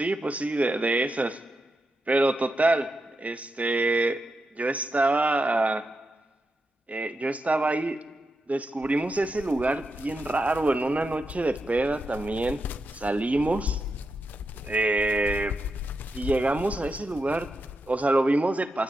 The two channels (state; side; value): normal; both; correlation 0.86